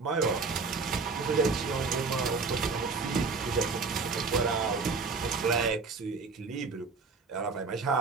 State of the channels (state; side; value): quieter; left; 4.5 dB